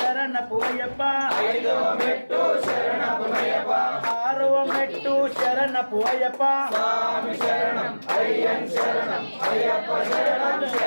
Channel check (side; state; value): both; inverted; correlation -1.00